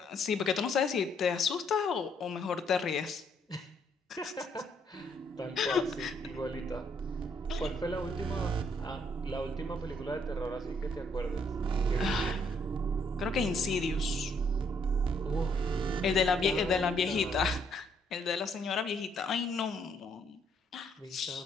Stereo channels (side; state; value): both; normal; correlation 0.69